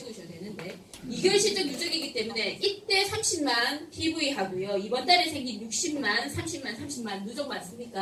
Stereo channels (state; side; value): identical; both; correlation 1.00